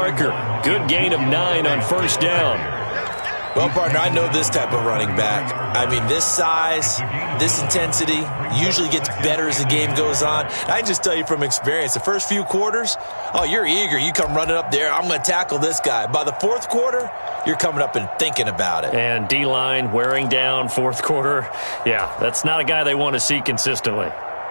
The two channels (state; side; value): inverted; both; correlation -1.00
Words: Good gain of 9 on 1st down. Well, partner, I know this type of running back. I mean, this size, this intensity usually gets better as the game goes on. I can just tell you from experience, the first few quarters, oh, you're eager. You come running up there, I'm going to tackle this guy. By the 4th quarter, you're coming up and thinking about it. And D-line wearing down 4th quarter. Yeah, that's not a guy they want to see consistently.